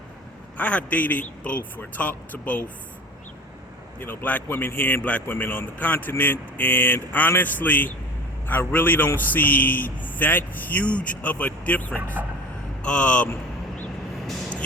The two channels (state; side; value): normal; both; correlation 0.36